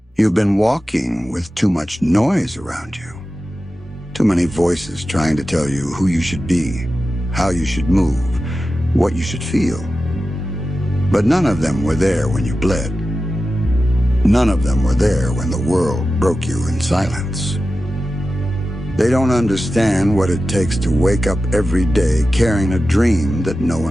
You've been walking with too much noise around you. Too many voices trying to tell you who you should be, how you should move, what you should feel. But none of them were there when you bled. None of them were there when the world broke you in silence. They don't understand what it takes to wake up every day carrying a dream that no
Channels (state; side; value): normal; both; correlation 0.93